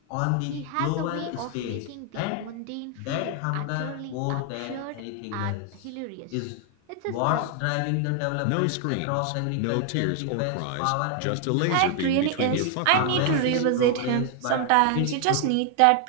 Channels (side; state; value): both; different; correlation 0.00